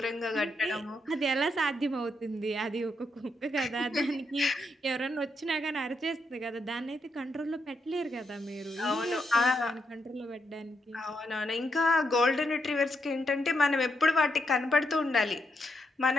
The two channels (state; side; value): normal; both; correlation 0.81